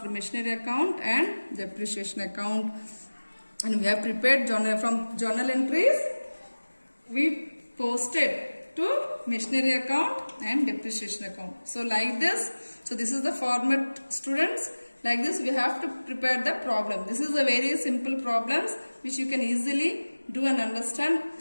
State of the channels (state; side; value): inverted; both; correlation -1.00